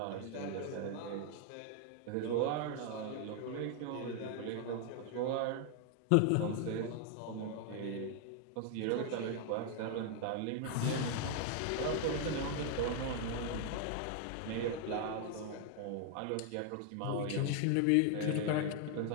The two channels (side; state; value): both; different; correlation 0.00